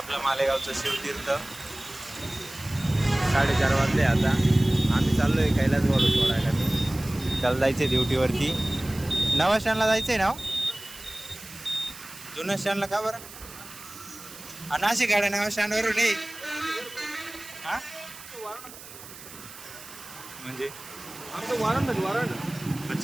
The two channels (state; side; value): noise; right; hiss, 16 dB below the sound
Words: मालेगावचं शिवतीर्थ. 4:30 वाजले आता. आम्ही चाललो आहे कैलास वालू सोडायला. त्याला जायचं आहे ड्युटीवरती. नवा स्टँडला जायचं आहे ना. जुन्या स्टँडला का बरं? नाशिक गाड्या नवा स्टँडवरून नाही. हां म्हणजे